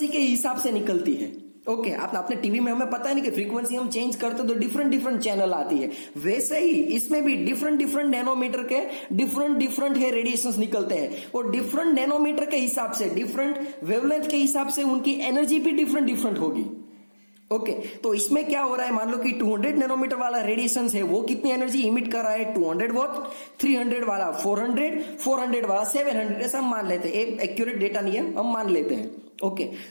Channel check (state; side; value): inverted; both; correlation -1.00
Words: के हिसाब से निकलती है। ओके, आपने टीवी में हमें पता है नहीं कि फ्रीक्वेंसी हम चेंज करते तो डिफरेंट चैनल आती है, वैसे ही इसमें भी डिफरेंट नैनोमीटर के डिफरेंट है रेडिएशंस निकलते हैं, और डिफरेंट नैनोमीटर के हिसाब से, डिफरेंट वेवलेंथ के हिसाब से उनकी एनर्जी भी डिफरेंट होगी। ओके, तो इसमें क्या हो रहा है, मान लो कि 200 नैनोमीटर वाला रेडिएशन है, वो कितनी एनर्जी इमिट कर रहा है, 200 वॉट, 300 वाला 400 वाला 700, ऐसा हम मान लेते हैं। एक्यूरेट डेटा नहीं है, हम मान लेते हैं। ओके,